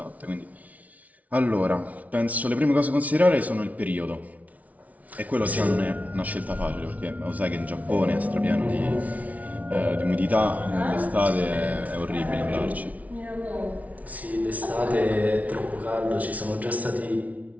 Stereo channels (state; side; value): late; left; 0.070 ms